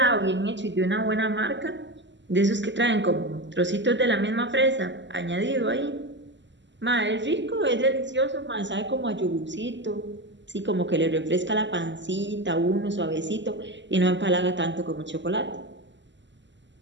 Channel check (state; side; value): late; left; 0.53 ms